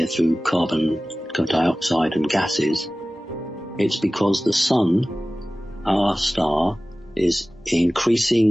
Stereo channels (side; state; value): both; normal; correlation 0.97